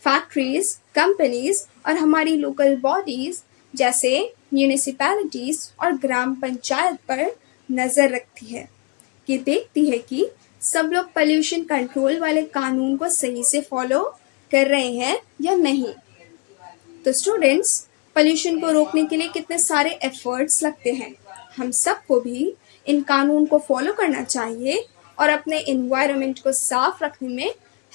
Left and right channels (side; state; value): right; quieter; 29.1 dB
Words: फैक्ट्रीज, कंपनीज और हमारी लोकल बॉडीज जैसे म्यूनिसिपैलिटीज और ग्राम पंचायत पर नज़र रखती है। ये देखती है कि सब लोग पोल्यूशन कंट्रोल वाले कानून को सही से फॉलो कर रहे हैं या नहीं। तो स्टूडेंट्स, पोल्यूशन को रोकने के लिए कितने सारे एफर्ट्स लगते हैं। हम सबको भी इन कानून को फॉलो करना चाहिए और अपने एनवायरनमेंट को साफ रखने में